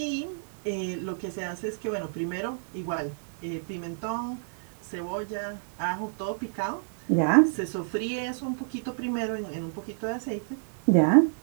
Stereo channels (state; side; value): silent; left; digital silence